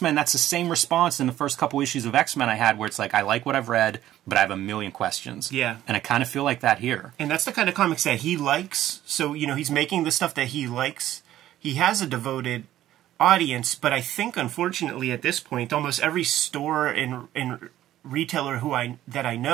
that's the same response in the first couple issues of X-Men I had, where it's like, I like what I've read, but I have a million questions. Yeah. And I kind of feel like that here. And that's the kind of comics that he likes. So, he's making the stuff that he likes. He has a devoted audience, but I think, unfortunately, at this point, almost every store and retailer that I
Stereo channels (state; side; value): quieter; left; 13.2 dB